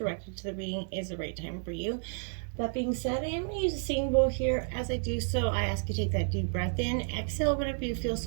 to the reading is the right time for you. That being said, I am going to use a singing bowl here. As I do so, I ask you to take that deep breath in, exhale whenever you feel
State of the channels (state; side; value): silent; left; 57 dB below the other